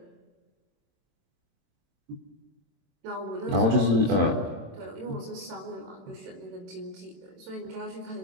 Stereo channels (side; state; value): left; late; 27 ms